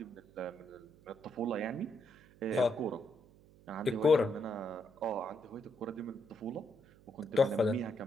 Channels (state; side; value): noise; right; hum, 25 dB below the sound